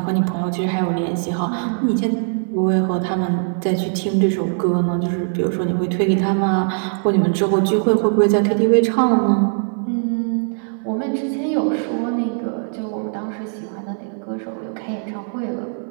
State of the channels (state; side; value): silent; left; 60 dB below the other